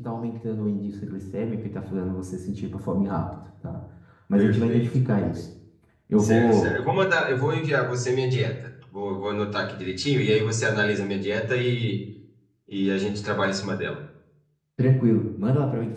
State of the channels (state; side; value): identical; both; correlation 1.00